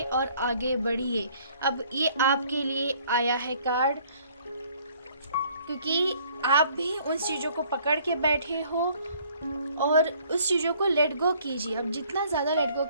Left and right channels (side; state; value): both; inverted; correlation -0.59